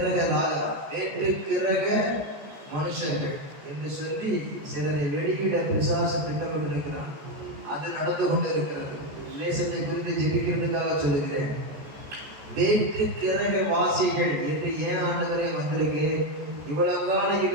கிரக மனுஷர்கள் என்று சொல்லி சிலரை வெளியிட பிசாசு திட்டமிட்டிருக்கிறார். அது நடந்து கொண்டு இருக்கிறது. தேசத்தை குறித்து ஜெபிக்கிறதுக்காக சொல்லுகிறேன். வேற்று கிரக வாசிகள் என்று ஏன் ஆண்டவரே வந்திருக்கு? இவ்வளவு காலம்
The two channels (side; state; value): left; late; 14 ms